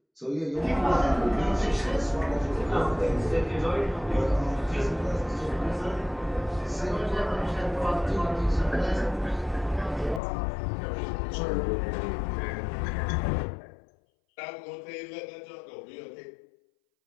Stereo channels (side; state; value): right; drops out; at 10.2 s